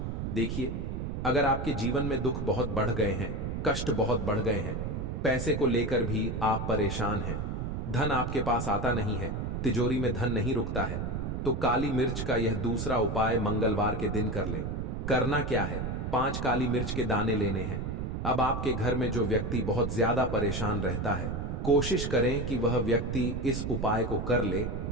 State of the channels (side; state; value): right; noise; rumble, 3 dB below the sound